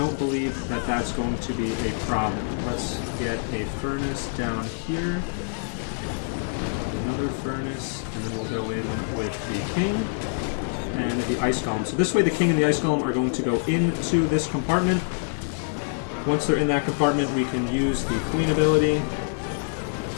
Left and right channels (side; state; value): right; silent; 61 dB below the other